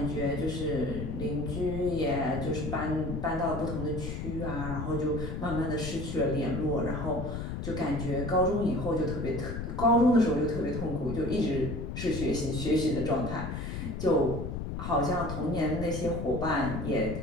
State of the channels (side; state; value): left; noise; rumble, 5 dB below the sound